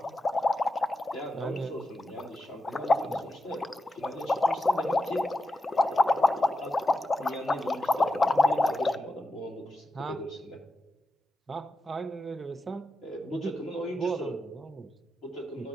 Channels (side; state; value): both; normal; correlation 0.88